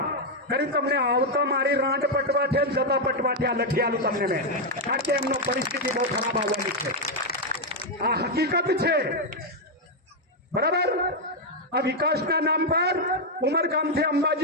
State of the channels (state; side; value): normal; both; correlation 0.01